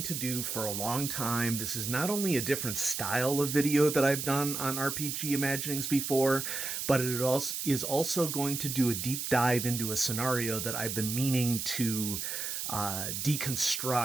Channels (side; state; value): right; noise; hiss, 4 dB below the sound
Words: to do for a long time. This is not only a different style of video that I've done on RPG Imaginings before, but it is also going to do a deep dive into a scenario that I've been meaning to